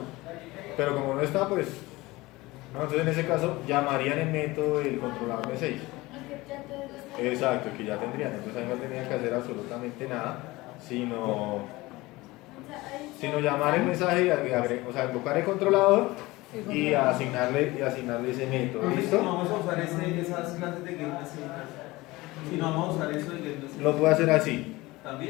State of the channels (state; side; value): quieter; right; 20.6 dB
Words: pero como no está, pues no, entonces en ese caso llamarían el método del controlador message. Exacto, que ya tendrían, entonces ahí no tendrían que hacer absolutamente nada, sino llamar el mensaje y o sea, invocar el controlador y asignarle ese método. Profe, si ¿Listo? no vamos a usar esas clases de get message, si no vamos a usar eso de get message, Lo puedo hacer así.